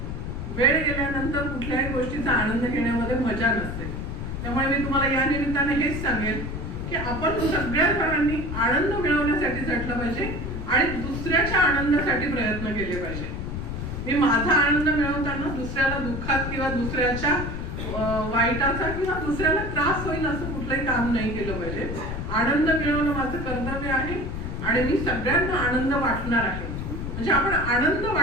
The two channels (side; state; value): left; noise; rumble, 5 dB below the sound